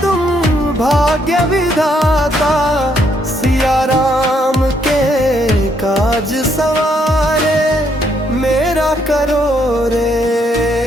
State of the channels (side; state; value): both; normal; correlation 0.72